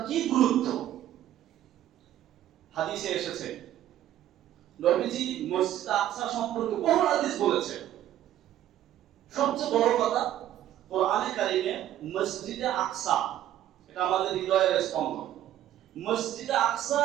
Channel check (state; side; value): quieter; left; 12.2 dB